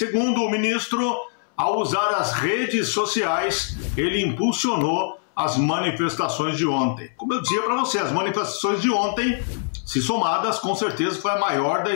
o ministro, ao usar as redes sociais, ele impulsionou as manifestações de ontem. Como eu dizia para você, as manifestações de ontem, se somadas, com certeza foi a maior da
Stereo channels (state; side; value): silent; right; 63 dB below the other